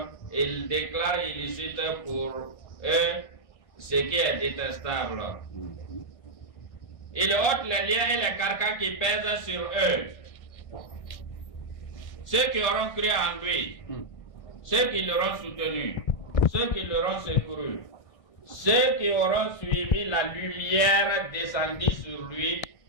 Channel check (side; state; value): right; late; 1.6 ms